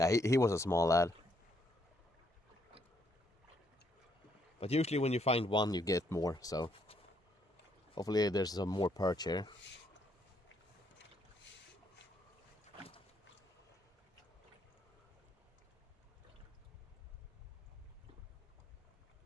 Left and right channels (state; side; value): normal; both; correlation 0.72